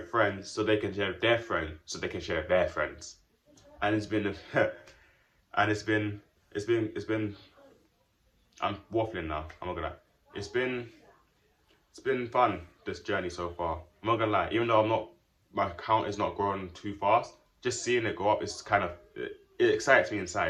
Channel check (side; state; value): both; identical; correlation 1.00